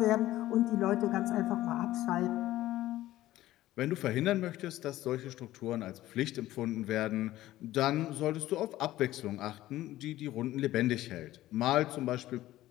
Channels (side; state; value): right; quieter; 15.2 dB